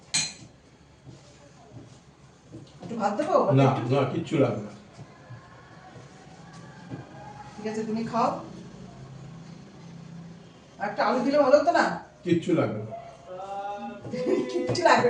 একটু ভাত দেবো? না না কিচ্ছু লাগবে না। ঠিক আছে তুমি খাও। একটা আলু দিলে ভালো হতো না? কিচ্ছু লাগবে না। কিচ্ছু লাগবে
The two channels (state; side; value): identical; both; correlation 1.00